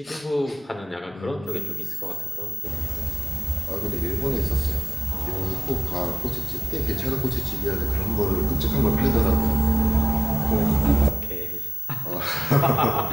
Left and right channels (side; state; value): both; normal; correlation 0.96